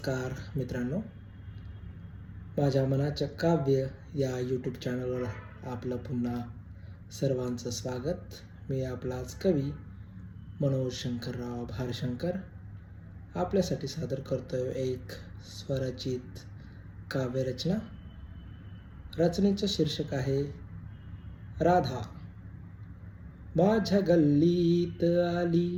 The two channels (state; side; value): identical; both; correlation 1.00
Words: मित्रांनो. माझ्या मनाचं काव्य या यूट्यूब चॅनलवर आपलं पुन्हा सर्वांचं स्वागत. मी आपलाच कवी मनोज शंकरराव भारशंकर आपल्यासाठी सादर करतोय एक स्वरचित काव्यरचना. रचनेचं शीर्षक आहे राधा. माझ्या गल्लीत आली